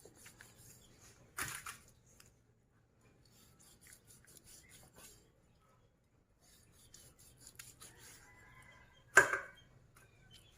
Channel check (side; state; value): both; identical; correlation 1.00